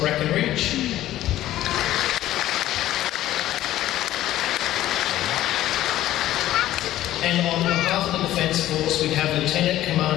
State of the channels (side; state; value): right; quieter; 14.0 dB